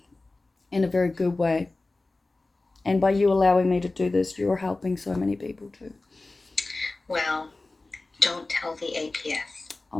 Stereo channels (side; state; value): right; quieter; 3.2 dB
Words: in a very good way. And by you allowing me to do this, you're helping so many people too. Well, don't tell the APS.